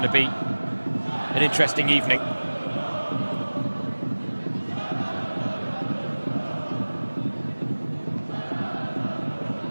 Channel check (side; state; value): both; inverted; correlation -1.00